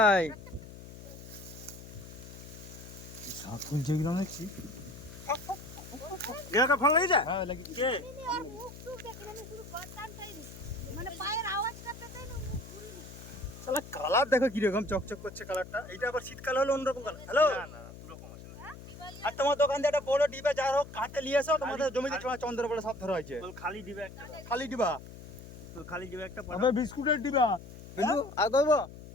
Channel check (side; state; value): left; noise; hum, 15 dB below the sound